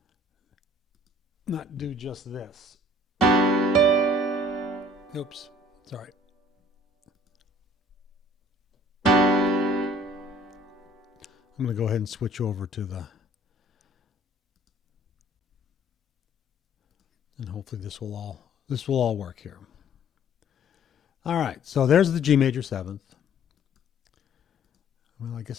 this. Oops, sorry. I'm going to go ahead and switch over to and hopefully this will all work here. All right, so there's the G major seventh. Well, I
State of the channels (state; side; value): normal; both; correlation 0.54